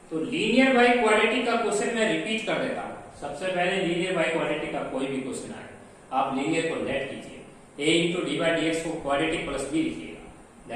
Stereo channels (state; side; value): identical; both; correlation 1.00